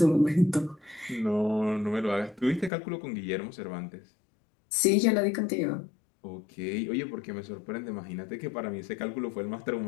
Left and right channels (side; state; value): right; drops out; at 2.7 s